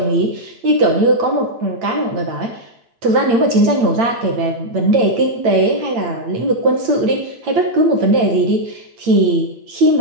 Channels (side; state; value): left; late; 8.8 ms